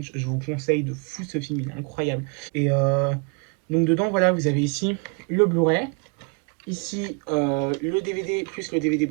je vous conseille de fou ce film, il est incroyable. Et donc dedans, voilà, vous avez ici le Blu-ray. Ici, le DVD plus le DVD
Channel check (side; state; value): left; quieter; 33.7 dB